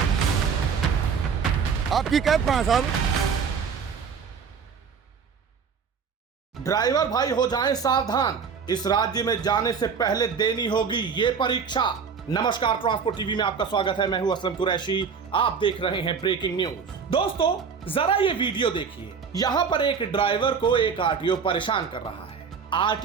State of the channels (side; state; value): left; quieter; 6.1 dB